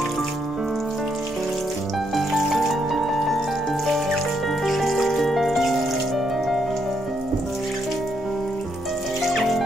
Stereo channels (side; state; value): both; normal; correlation 0.76